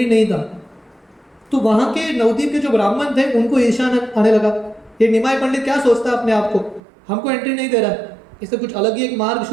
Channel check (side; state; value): left; drops out; at 6.8 s